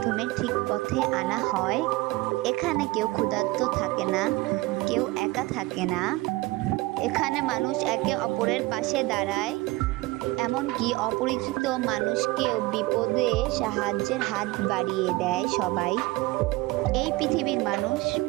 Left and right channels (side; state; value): left; quieter; 20.9 dB